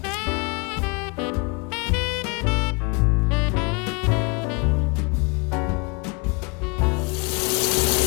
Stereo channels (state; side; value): quieter; right; 30.5 dB